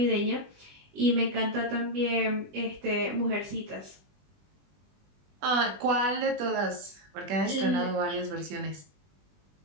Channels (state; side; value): late; left; 20 ms